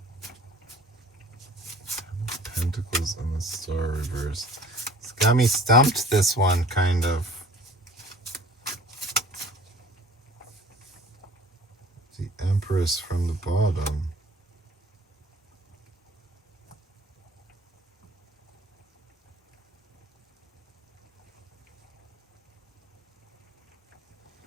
Pentacles and the Star reversed. It's got me stumped, this one, kind of. The Empress from the bottom.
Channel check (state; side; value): normal; both; correlation 0.50